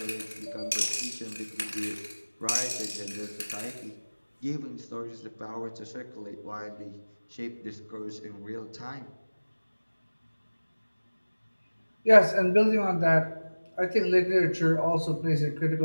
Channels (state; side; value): inverted; both; correlation -1.00